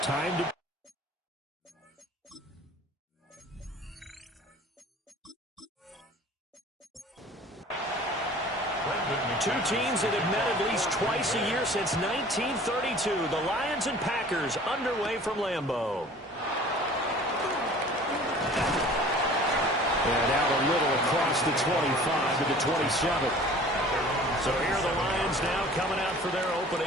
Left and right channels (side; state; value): both; normal; correlation 0.46